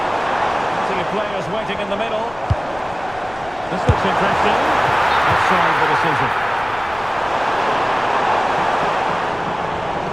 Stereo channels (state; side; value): noise; left; rumble, 20 dB below the sound